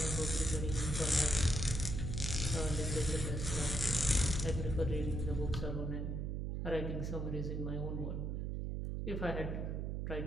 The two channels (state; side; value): noise; right; hum, 2 dB below the sound